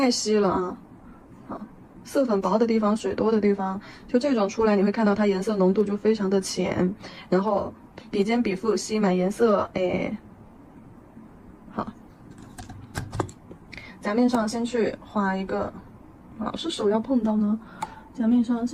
稀了啊。好，色粉薄的地方，水多的地方，就这种出来，你会看到它颜色浓度就非常的浅，然后笔尖笔腹吸满颜色，好，甲面上先去画一个，是手要碰到呢。甲面上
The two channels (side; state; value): both; identical; correlation 1.00